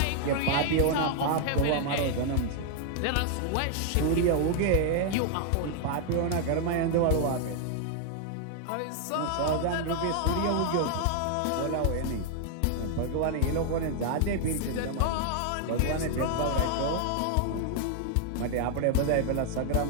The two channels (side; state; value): both; different; correlation 0.00